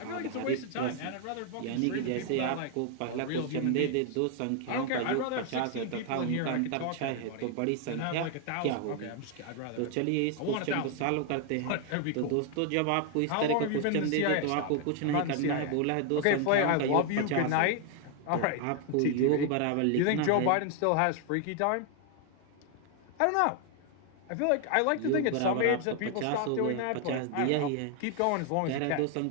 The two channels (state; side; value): different; both; correlation 0.00